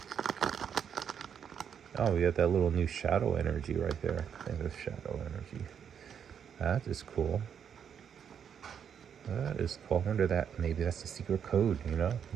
Oh, we got that little new shadow energy right there. I think it's shadow energy. That is cool. That is cool. I wonder that maybe that's a secret code, you know?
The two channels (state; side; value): quieter; left; 7.9 dB